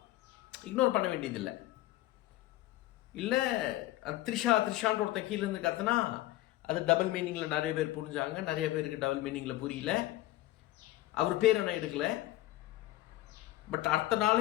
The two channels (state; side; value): quieter; right; 16.3 dB